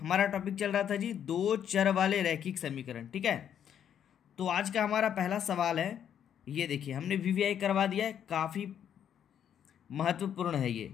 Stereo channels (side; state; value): right; quieter; 9.2 dB